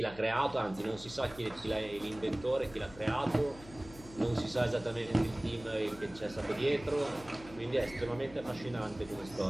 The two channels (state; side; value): noise; left; hum, 18 dB below the sound